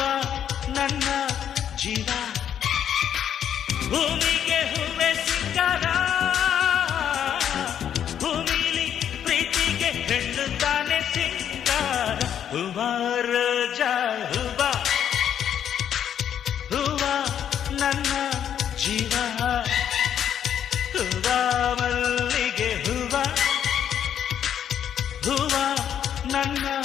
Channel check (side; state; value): right; quieter; 9.3 dB